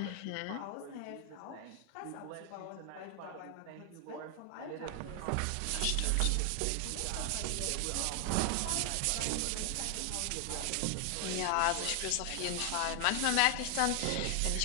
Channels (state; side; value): different; both; correlation 0.00